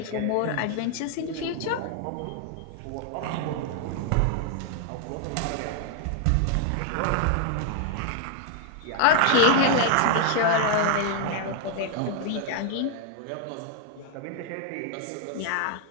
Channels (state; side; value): different; both; correlation -0.01